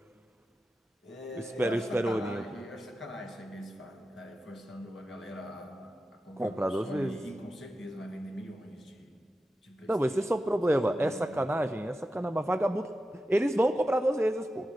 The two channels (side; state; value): both; normal; correlation 0.91